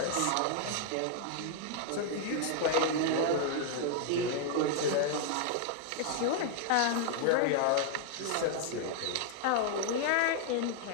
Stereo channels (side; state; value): both; different; correlation 0.00